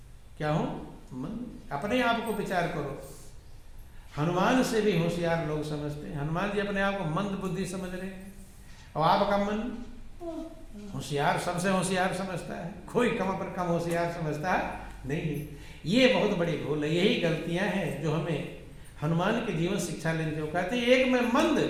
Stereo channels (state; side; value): identical; both; correlation 1.00